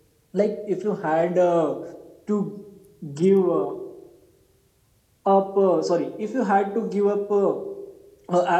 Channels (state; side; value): identical; both; correlation 1.00